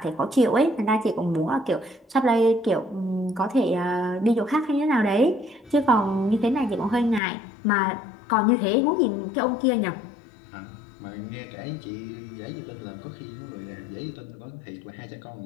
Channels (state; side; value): drops out; right; at 7.2 s